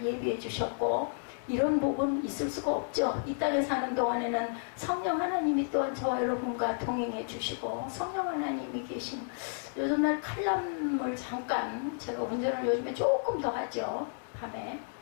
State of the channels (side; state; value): right; silent; digital silence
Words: 예비해 주셨고 이런 복은 있을 수가 없죠. 이 땅에 사는 동안에는 성령 하나님이 또한 저와 여러분과 동행해 주시고 성령 하나님이 계신 요즘날 칼럼을 잠깐 제가 운전을 요즘에 조금 더 하죠. 밤에